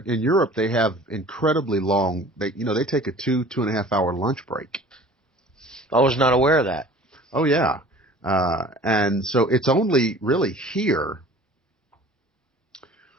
In Europe they have incredibly long. They take a 2.5 hour lunch break. I was not aware of that. Oh yeah, and so it's only really here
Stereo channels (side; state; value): both; normal; correlation 0.46